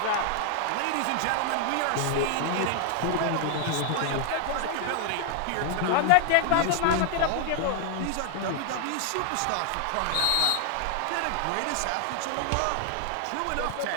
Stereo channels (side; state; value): both; different; correlation 0.00